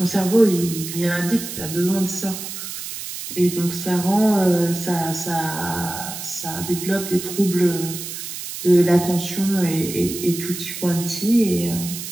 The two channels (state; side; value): noise; right; hiss, 8 dB below the sound